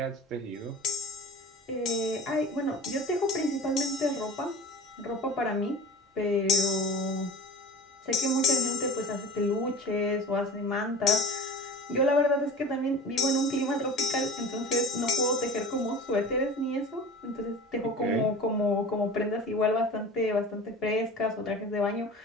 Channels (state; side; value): normal; both; correlation 0.37